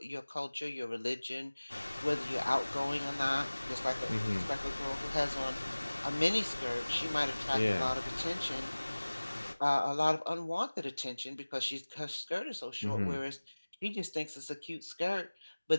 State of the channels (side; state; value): both; inverted; correlation -1.00